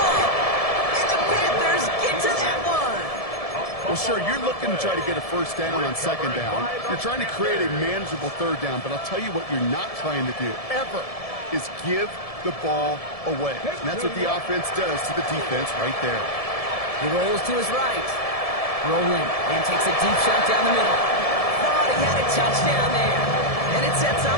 And the Panthers get to that one. Well, sure, you're looking to try to get a first down on 2nd down. You're trying to create a manageable 3rd down, but I'll tell you what you're not trying to do, ever, is give the ball away. And that's what the offense does to the defense right there. He rolls to his right. Rolling and takes a deep shot down the middle. Thought he had a touchdown there. And it sets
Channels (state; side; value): late; right; 1.7 ms